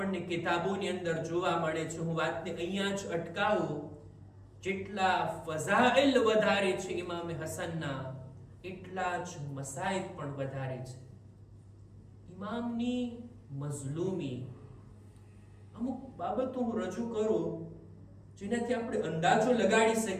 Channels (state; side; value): identical; both; correlation 1.00